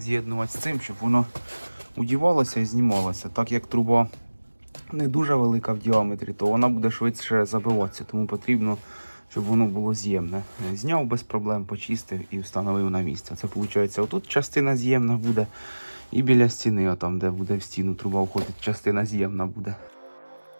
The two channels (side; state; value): both; inverted; correlation -1.00